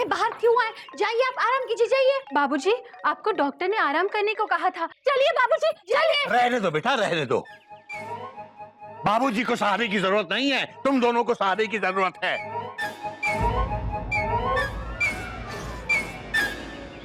बाहर क्यों आए? जाइए, आप आराम कीजिए, जाइए। बाबूजी, आपको डॉक्टर ने आराम करने को कहा था। चलिए बाबूजी, चलिए। रहने दो बेटा, रहने दो। बाबूजी को सहारे की जरूरत नहीं है, तुम दोनों को सहारे की जरूरत है।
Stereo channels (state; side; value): identical; both; correlation 1.00